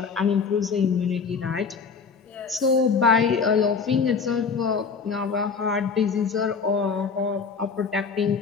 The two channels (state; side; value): quieter; right; 5.4 dB